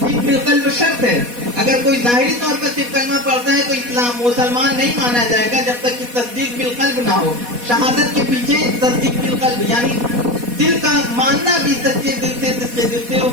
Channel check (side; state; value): left; late; 4.1 ms